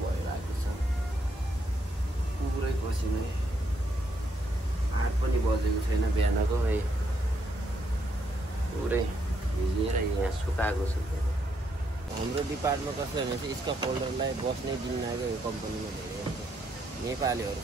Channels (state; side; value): normal; both; correlation 0.76